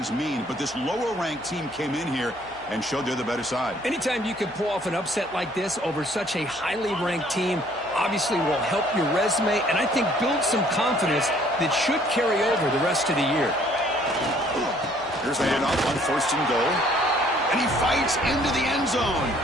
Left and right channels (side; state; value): left; noise; hum, 27 dB below the sound